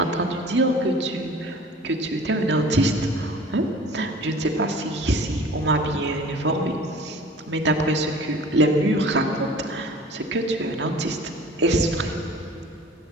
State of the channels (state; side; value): normal; both; correlation 0.45